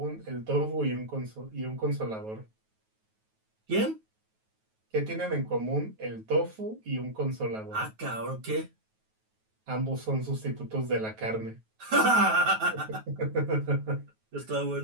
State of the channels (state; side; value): late; left; 9.3 ms